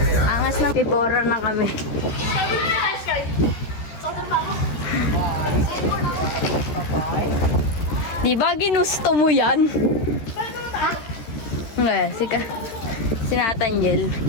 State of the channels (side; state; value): right; late; 13 ms